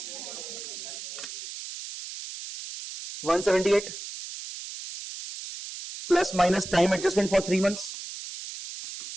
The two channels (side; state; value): right; noise; hiss, 10 dB below the sound